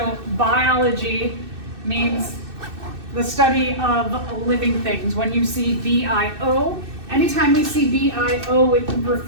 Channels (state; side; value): late; left; 2.6 ms